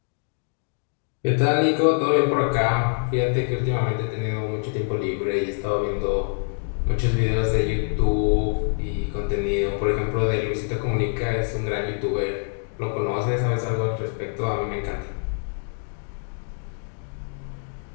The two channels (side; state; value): right; silent; 60 dB below the other